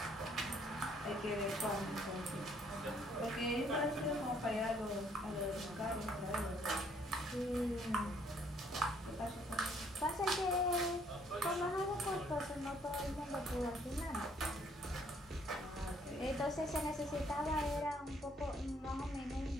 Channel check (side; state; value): both; normal; correlation 0.65